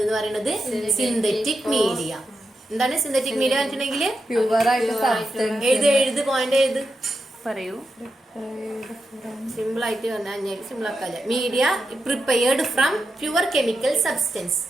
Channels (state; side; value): normal; both; correlation 0.87